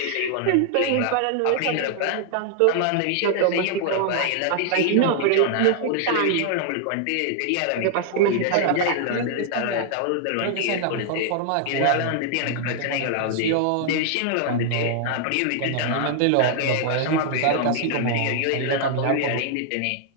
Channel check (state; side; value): different; both; correlation -0.01